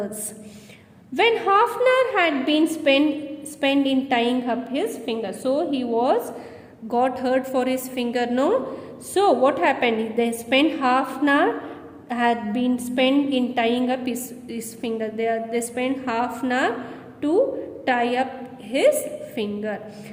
When half an hour had been spent in tying up his finger, so he got hurt for his finger, no? So what happened? They spent half an hour had been spent in tying up his finger. They spent half an hour to tie up his finger,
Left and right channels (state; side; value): identical; both; correlation 1.00